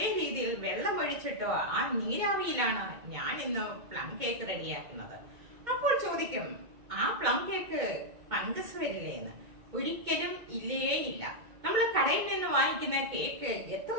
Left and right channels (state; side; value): late; left; 2.1 ms